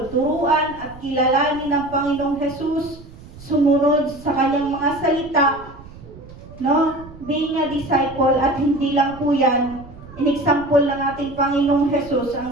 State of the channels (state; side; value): noise; right; rumble, 18 dB below the sound